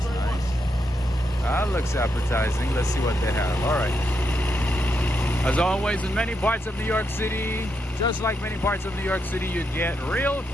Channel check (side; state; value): both; normal; correlation 0.82